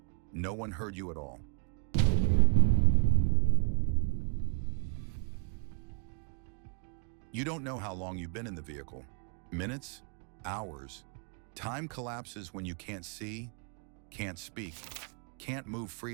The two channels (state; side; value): quieter; left; 39.4 dB